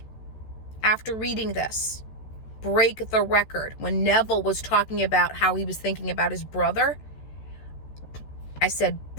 after reading this, break the record, when Neville was talking about how he was thinking about his brother, I said,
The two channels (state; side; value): late; right; 14 ms